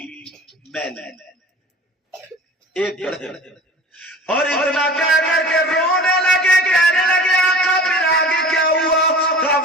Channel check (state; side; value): normal; both; correlation 0.40